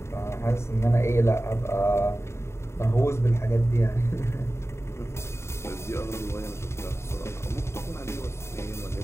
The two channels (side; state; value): right; late; 0.13 ms